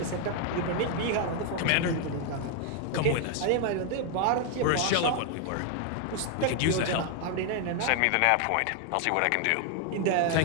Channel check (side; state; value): both; different; correlation 0.01